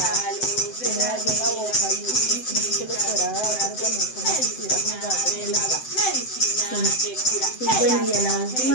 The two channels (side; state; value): right; late; 7.8 ms